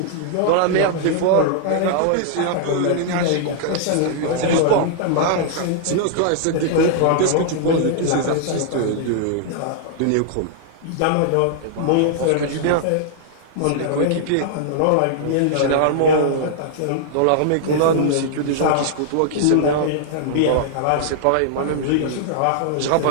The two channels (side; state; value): both; different; correlation -0.01